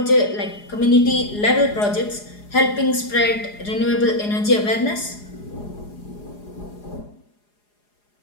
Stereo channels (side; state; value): right; late; 4.8 ms